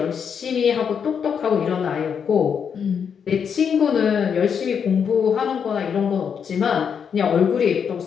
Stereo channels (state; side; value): quieter; right; 7.1 dB